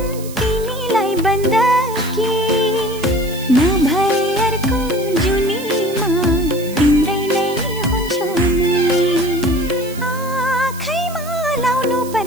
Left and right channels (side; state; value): right; noise; hiss, 16 dB below the sound